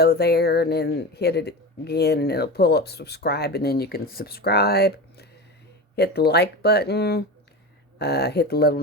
there and then hit it again, and it'll pull up subscribe, and then you can subscribe. Hit the like button. Hit the little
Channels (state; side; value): normal; both; correlation 0.26